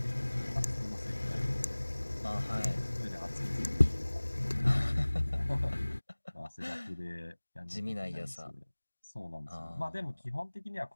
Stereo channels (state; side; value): inverted; both; correlation -1.00